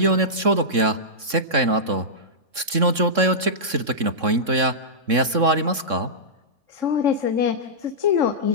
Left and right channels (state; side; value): late; left; 3.6 ms